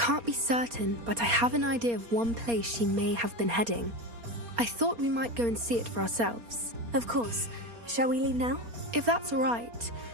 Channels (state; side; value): late; left; 4.3 ms